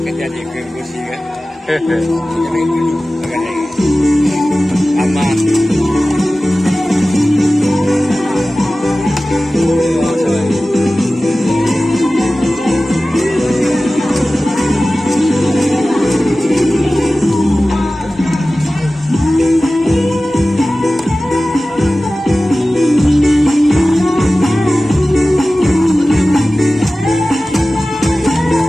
jadi ke Gusni kan? Aman.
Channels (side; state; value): both; normal; correlation 0.96